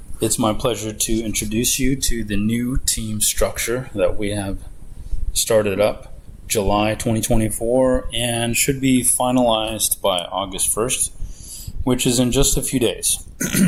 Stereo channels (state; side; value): identical; both; correlation 1.00